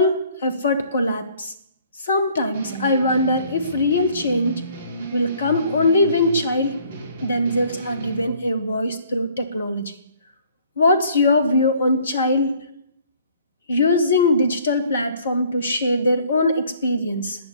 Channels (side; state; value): both; inverted; correlation -0.58